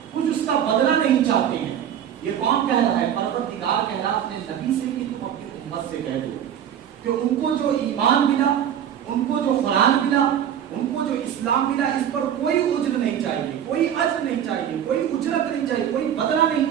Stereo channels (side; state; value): left; quieter; 9.7 dB